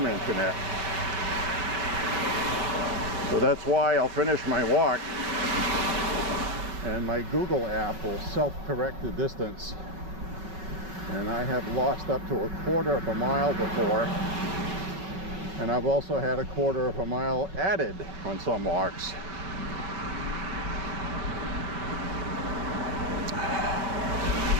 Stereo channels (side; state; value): left; late; 5.3 ms